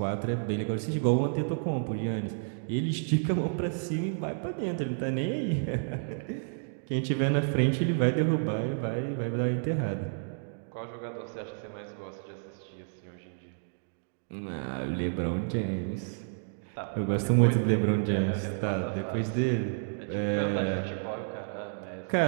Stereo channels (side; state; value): left; silent; digital silence